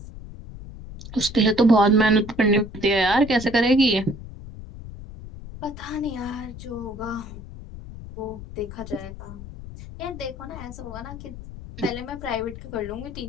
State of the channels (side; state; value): left; noise; rumble, 13 dB below the sound